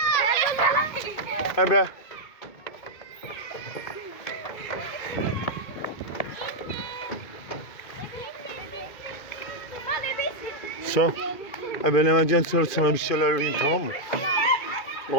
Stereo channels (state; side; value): late; right; 2.2 ms